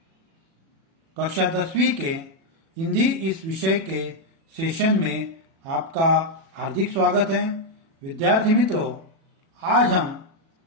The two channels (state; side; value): late; left; 37 ms